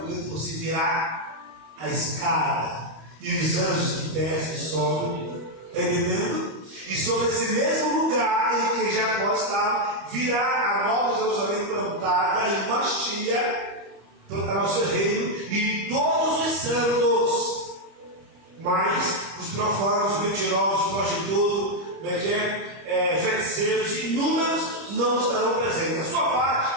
você virar a escada, e os anjos que descem e sobem, está entendendo? E sobre esse mesmo lugar em que Jacó estava, virá a nova Jerusalém plantada em Mashiach, plantar o seu reino, e todos os santos, mas os profanos, os mentirosos, os prostitutos, feiticeiros, inúmeros, não estarão presentes. A sua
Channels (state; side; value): late; left; 25 ms